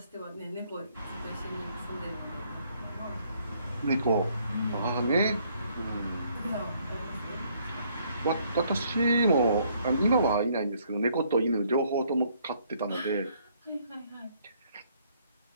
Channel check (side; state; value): both; inverted; correlation -0.67